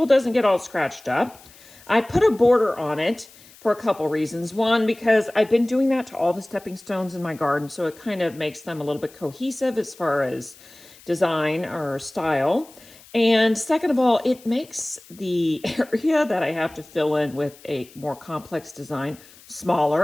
doesn't get all scratched up. I put a border on it for a couple reasons. One, because I've been doing that to all the stepping stones in my garden, so it kind of makes them a little bit cohesive as far as design or style. And second of all, it makes the area that I have to fill in with a more complex design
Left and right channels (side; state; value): left; noise; hiss, 23 dB below the sound